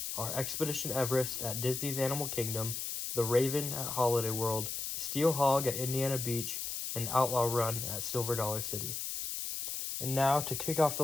are Expedition Everest at Disney's Animal Kingdom, The Raven at Holiday World, Steel Hog at Indiana Beach, and Outlaw Run at Silver Dollar City. And now, to kick off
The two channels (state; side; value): noise; left; hiss, 4 dB below the sound